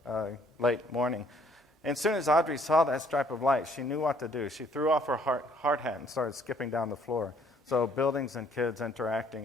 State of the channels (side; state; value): both; normal; correlation 0.62